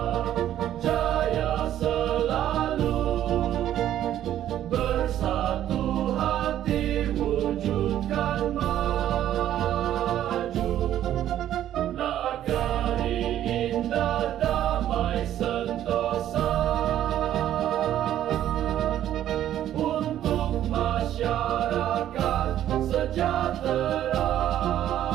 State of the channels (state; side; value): quieter; left; 11.7 dB